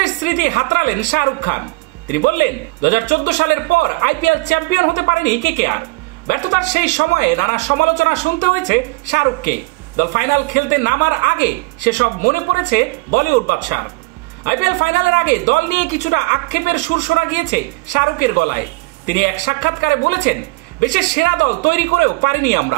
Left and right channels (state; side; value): quieter; left; 25.1 dB